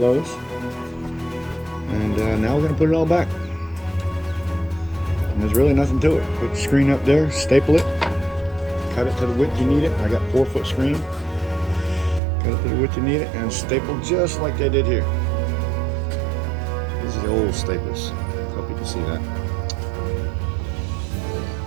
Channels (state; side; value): drops out; left; at 12.2 s